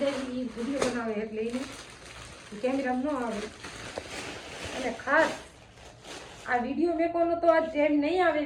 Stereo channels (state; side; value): identical; both; correlation 1.00